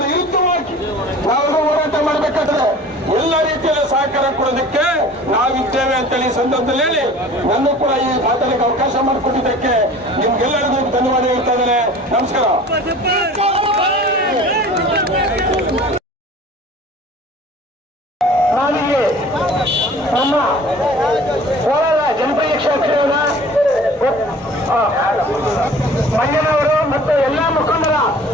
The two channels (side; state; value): both; normal; correlation 0.45